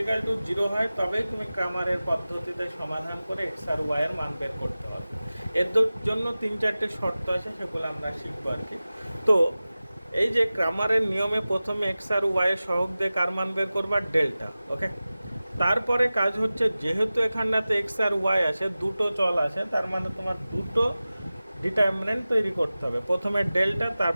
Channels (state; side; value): inverted; both; correlation -0.96